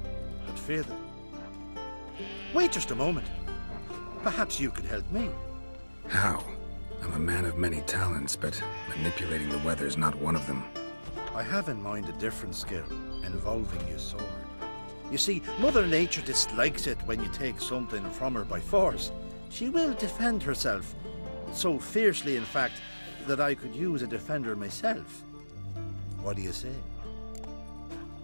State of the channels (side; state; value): both; inverted; correlation -1.00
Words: but fear them. Wait just a moment. Perhaps you could help me. How? I'm a man of many talents, but manipulating the weather's not one of them. I have in mind a different skill, involving your sword. You see, Mother Nature dislikes it when you take something from her by force. She will defend herself, so fiercely in fact, that I could use a defender myself. What do you say?